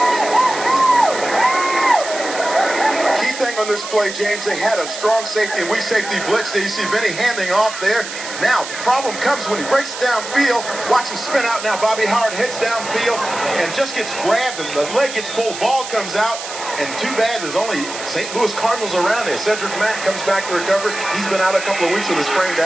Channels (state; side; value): noise; right; hiss, 9 dB below the sound